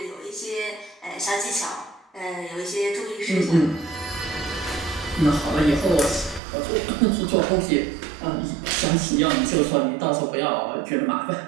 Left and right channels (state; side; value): drops out; left; at 6.4 s